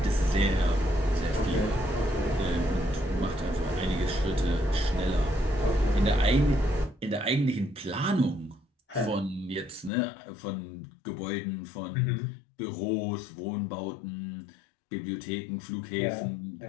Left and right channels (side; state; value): right; drops out; at 9.9 s